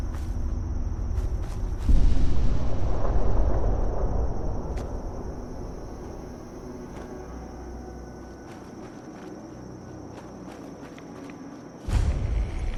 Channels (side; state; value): both; identical; correlation 1.00